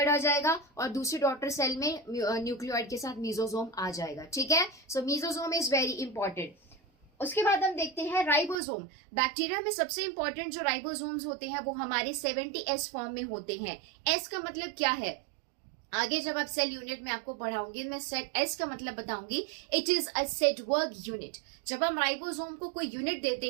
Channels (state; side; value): drops out; left; at 8.6 s